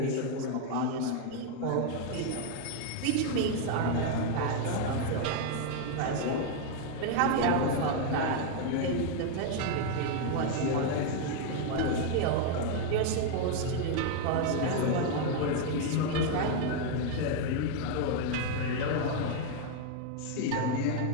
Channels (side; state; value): both; different; correlation 0.00